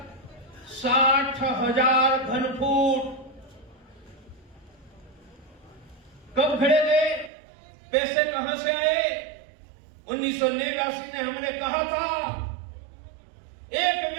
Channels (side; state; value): left; drops out; at 7.3 s